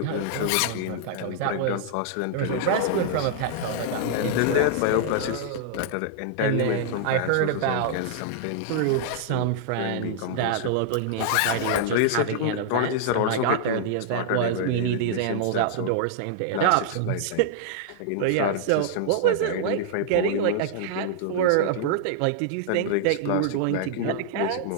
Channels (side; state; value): both; different; correlation -0.01